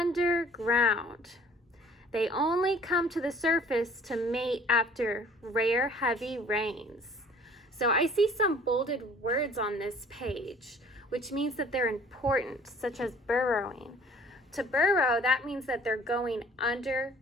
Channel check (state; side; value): normal; both; correlation 0.53